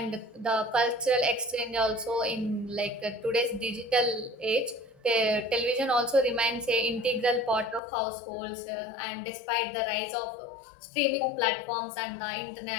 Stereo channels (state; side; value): drops out; right; at 7.8 s